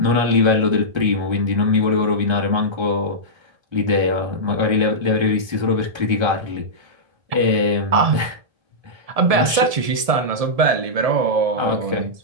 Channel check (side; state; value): left; late; 1.7 ms